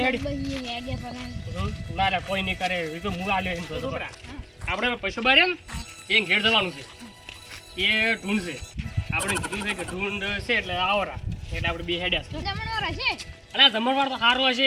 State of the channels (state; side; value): identical; both; correlation 1.00